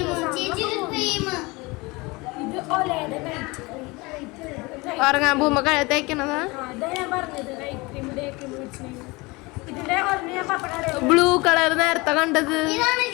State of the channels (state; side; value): quieter; right; 24.4 dB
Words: ഇത് ഒലയുടെ നൈറ്റ് ഉറങ്ങാൻ പോകുമ്പോ തേക്കണതാ. അതാ ഞാൻ പറഞ്ഞത് നൈറ്റ് ക്രീം ഡേ ക്രീം മേടിച്ചിട്ടുണ്ടെങ്കിൽ ഇതിന്റെ ഒരെണ്ണം ഞാൻ പപ്പട ബ്ലൂ കളർ നേരത്തെ കണ്ടത്